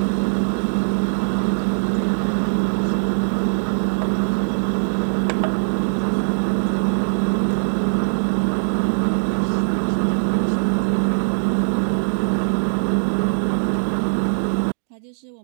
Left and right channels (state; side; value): silent; left; digital silence